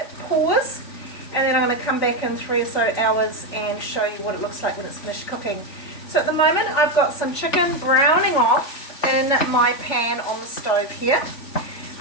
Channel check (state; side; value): late; right; 3.5 ms